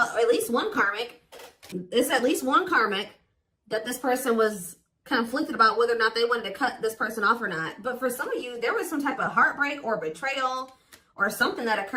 at least one karmic. It's at least one karmic that this person was conflicted about whether or not they wanted to cut this person off or not. But for some of you, there was some type of heartbreak or betrayal or something that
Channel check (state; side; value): identical; both; correlation 1.00